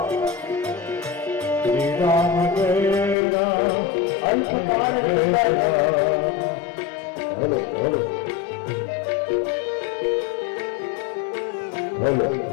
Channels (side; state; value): right; drops out; at 3.2 s